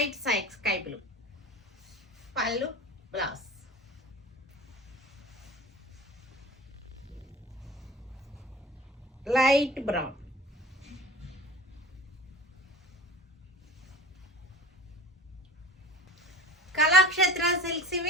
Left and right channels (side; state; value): both; normal; correlation 0.40